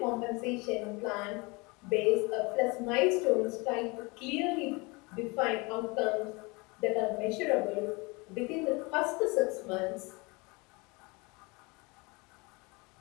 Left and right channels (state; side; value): quieter; right; 26.8 dB